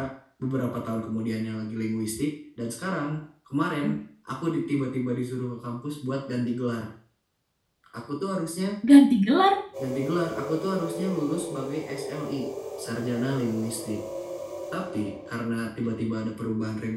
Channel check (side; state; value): both; identical; correlation 1.00